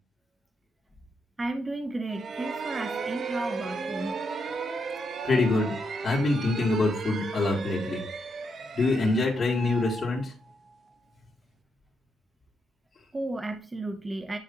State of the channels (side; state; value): both; normal; correlation 0.81